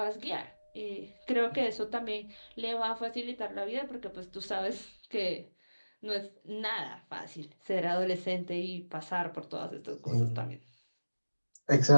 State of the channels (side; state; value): both; inverted; correlation -1.00